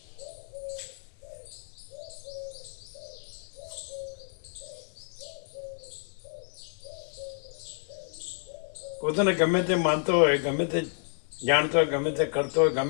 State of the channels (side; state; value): right; silent; 58 dB below the other